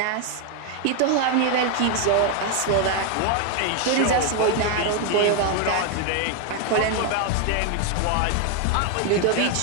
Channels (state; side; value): different; both; correlation 0.01